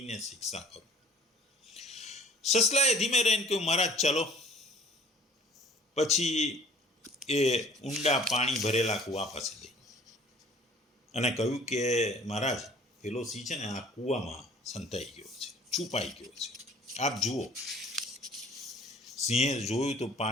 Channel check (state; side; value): normal; both; correlation 0.51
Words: શિક્ષા કરું. સસલાએ ધીમે રહીને કહ્યું, મહારાજ ચલો. પછી એ ઊંડા પાણી ભરેલા કૂવા પાસે ગઈ અને કહ્યું કે મહારાજ, પેલો સિંહ છે ને આ કૂવામાં સંતાઈ ગયો છે, છુપાઈ ગયો છે, આપ જુઓ. સિંહે જોયું તો